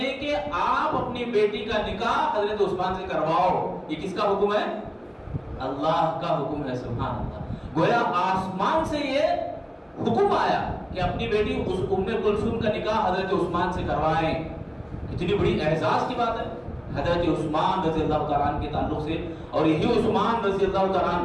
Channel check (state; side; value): identical; both; correlation 1.00